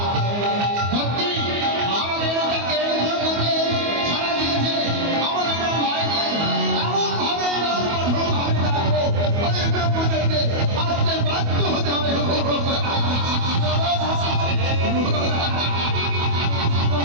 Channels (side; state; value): left; late; 25 ms